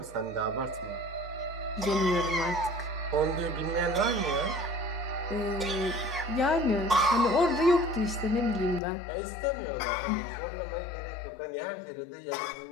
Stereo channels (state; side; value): drops out; right; at 8.8 s